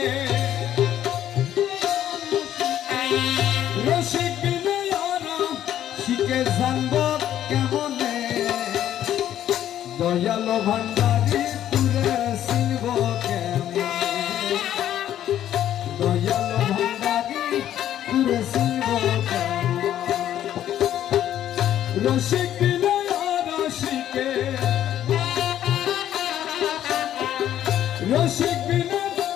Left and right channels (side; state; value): right; quieter; 11.4 dB